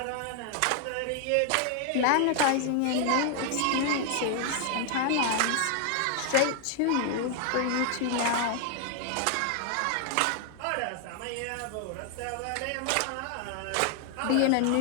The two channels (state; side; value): different; both; correlation 0.00